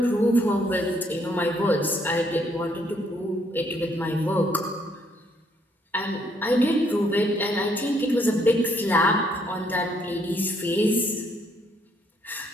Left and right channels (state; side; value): normal; both; correlation 0.70